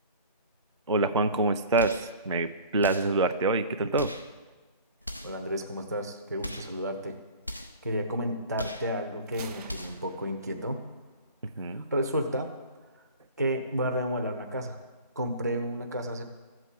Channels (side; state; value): both; inverted; correlation -0.42